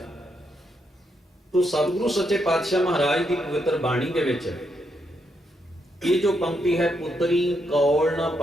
ਤੋ ਸਤਿਗੁਰੂ ਸੱਚੇ ਪਾਤਸ਼ਾਹ ਮਹਾਰਾਜ ਦੀ ਪਵਿੱਤਰ ਬਾਣੀ ਦੇ ਵਿੱਚ ਇਹ ਜੋ ਪੰਕਤੀ ਹੈ, ਪੁੱਤਰੀ ਕੌਲ ਨਾ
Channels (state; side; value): normal; both; correlation 0.79